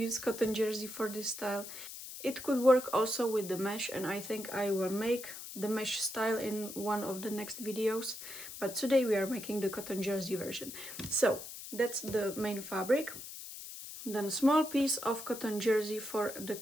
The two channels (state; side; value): noise; left; hiss, 11 dB below the sound